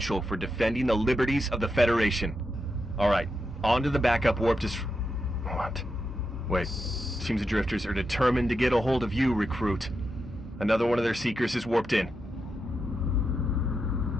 for defending the liberties of the Federation. Alright, on to the backup warp What? Wait, seems the Drifters are determined to get a hold of you, recruit. Another one of their Seekers is warped in.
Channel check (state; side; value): normal; both; correlation 0.86